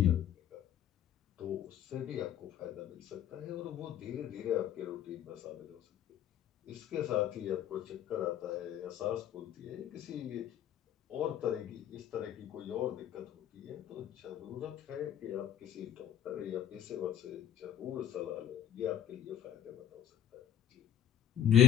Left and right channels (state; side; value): quieter; right; 10.4 dB